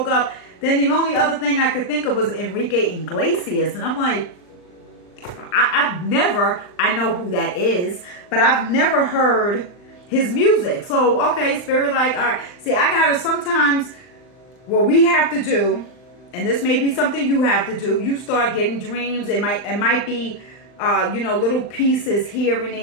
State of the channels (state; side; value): late; right; 39 ms